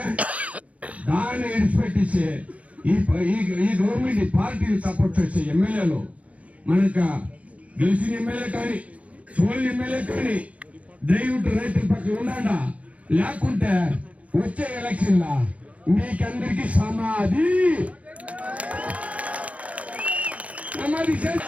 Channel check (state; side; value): late; left; 0.065 ms